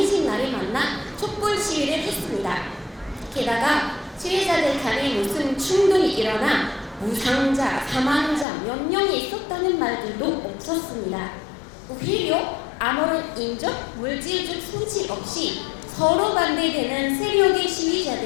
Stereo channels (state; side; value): drops out; right; at 8.5 s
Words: 날에 만나 촛불 시위를 했습니다. 게다가 시위자들 간에 무슨 충돌이 일어나 무상자, 사망자 몇 명이 있었다는 말들도 없었습니다. 오히려 아무런 인적, 물질적 손실 없이 서로 반대되는 세력의